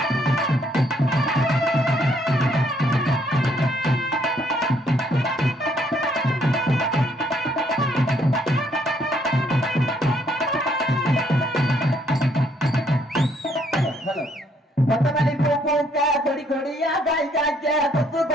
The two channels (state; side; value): normal; both; correlation 0.68